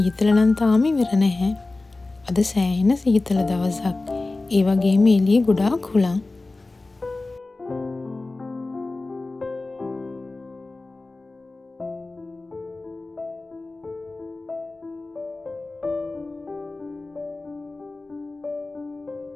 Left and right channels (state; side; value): quieter; right; 3.2 dB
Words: නම් තාම ඉවර නැහැ. අද සෑහෙන සීතල දවසක්. ඒ වගේම එළියේ ගොඩාක් හුළං.